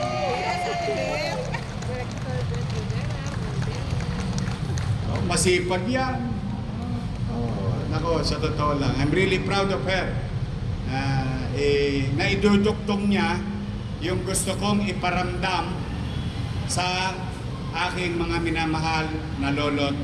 Masipag yan. Nako, sa totoo lang, I'm really proud of her. Naiduduktong niya yung gusto kong iparamdam sa aking mga minamahal na lolo't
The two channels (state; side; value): identical; both; correlation 1.00